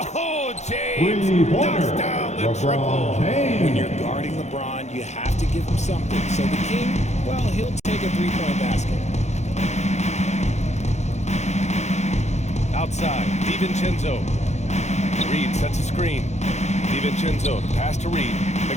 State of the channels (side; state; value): right; late; 0.33 ms